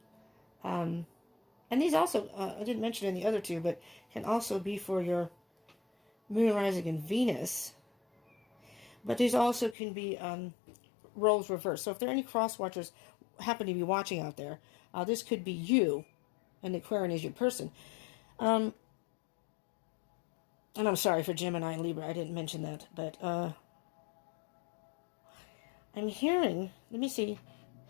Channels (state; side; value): drops out; right; at 9.8 s